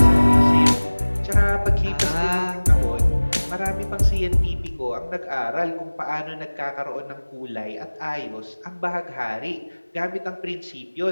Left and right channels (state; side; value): inverted; both; correlation -1.00